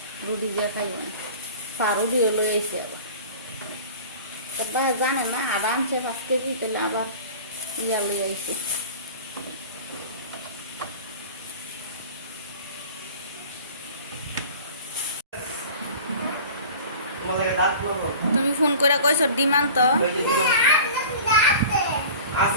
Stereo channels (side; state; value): both; inverted; correlation -0.40